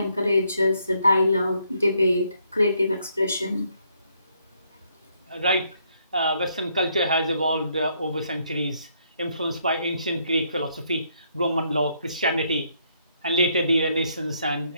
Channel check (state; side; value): inverted; both; correlation -0.72